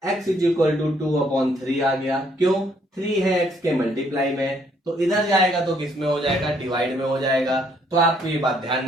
x इज इक्वल टू 2/3 आ गया। क्यों, 3 है x के मल्टीप्लाई में, तो इधर जाएगा तो किस में हो जाएगा, डिवाइड में हो जाएगा। तो आपको ये बात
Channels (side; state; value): both; normal; correlation 0.67